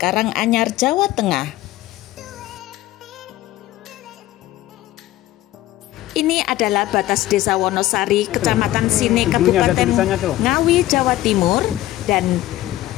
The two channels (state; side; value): quieter; right; 15.4 dB